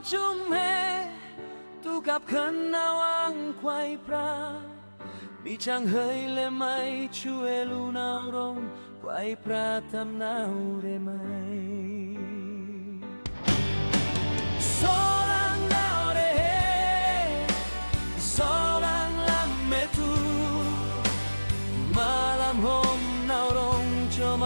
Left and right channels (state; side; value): inverted; both; correlation -1.00